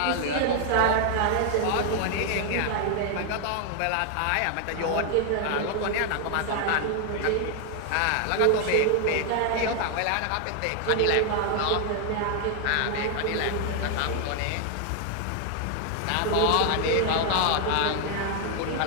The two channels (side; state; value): both; different; correlation 0.00